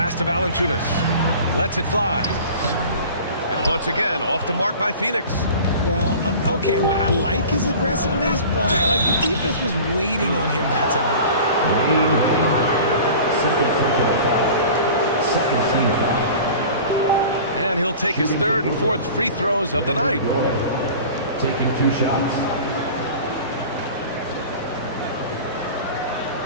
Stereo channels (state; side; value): inverted; both; correlation -0.40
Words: to Valanciunas. Lets it fly. And once again, off the mark by Phoenix. Well, okay, well, I like his aggressiveness, but like the defense was waiting on him that time. Second team foul. And he'll take his third and fourth free throws of the night. Taking 2 shots.